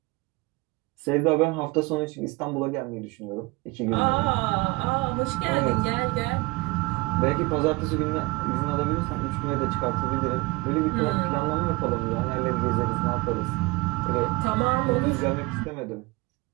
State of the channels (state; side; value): quieter; left; 23.5 dB